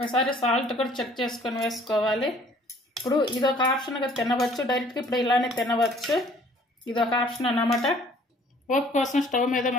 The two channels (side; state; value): both; normal; correlation 0.56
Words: సాల్ట్ కూడా చెక్ చేసుకొని వేసుకోవాలి. ఇప్పుడు ఇది ఒక ఆప్షన్గా తినవచ్చు, డైరెక్ట్గా ఇప్పుడు ఇలానే తినవచ్చు. ఇది ఒక ఆప్షన్ అన్నమాట. పోపు కోసం స్టవ్ మీద